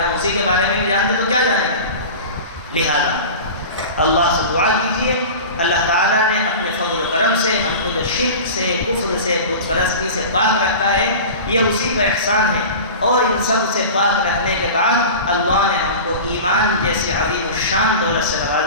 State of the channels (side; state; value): both; inverted; correlation -0.33